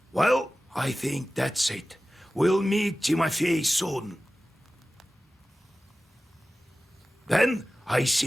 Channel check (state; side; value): normal; both; correlation 0.96